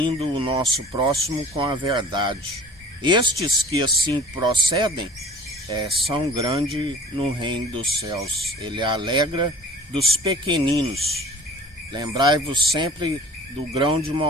o nosso próximo com a verdade. Estes que assim procedem são grandes no reino dos céus. Ele alegra dos pequeninos. Lembrai-vos sempre do grão de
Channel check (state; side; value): normal; both; correlation 0.45